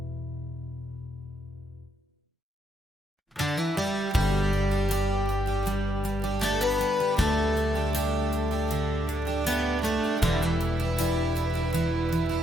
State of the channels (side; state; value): both; normal; correlation 0.77